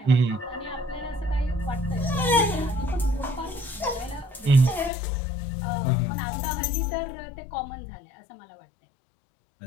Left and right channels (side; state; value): right; drops out; at 4.9 s